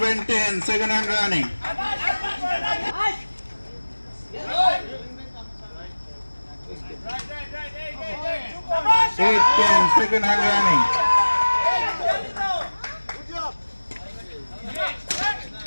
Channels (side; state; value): both; inverted; correlation -1.00